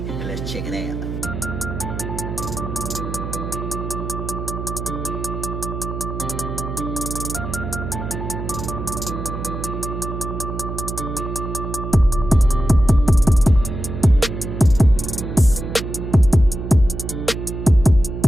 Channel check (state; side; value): noise; right; hum, 6 dB below the sound